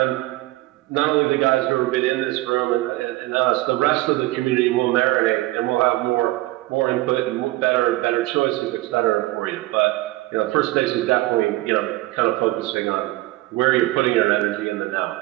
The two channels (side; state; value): left; quieter; 18.6 dB